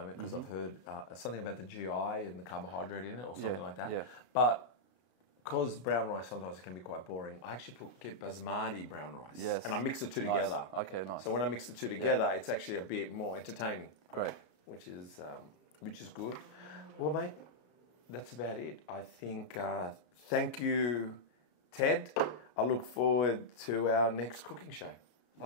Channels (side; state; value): right; late; 33 ms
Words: because I've heard something about the GI and the carbohydrate in it or something like that. Yeah. But because brown rice sometimes it can be quite boring, I actually get basmati brown rice. Yes. And I mix the two together. Okay, nice. So when I mix the two together, it's actually a bit more entertaining. Great. Which is good. Well, mate, that's about it. I think, thank you, Ted. I look forward to our next cooking show. That